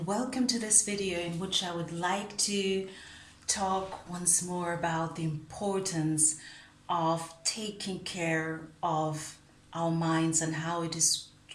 welcome to this video in which I would like to talk once more about the importance of taking care of our minds and how it is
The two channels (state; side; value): identical; both; correlation 1.00